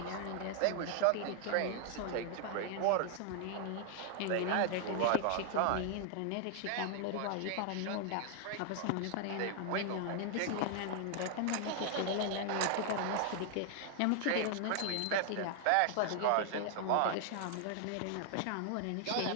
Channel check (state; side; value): different; both; correlation 0.00